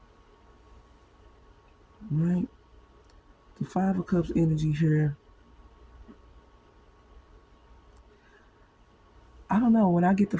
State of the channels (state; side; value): identical; both; correlation 1.00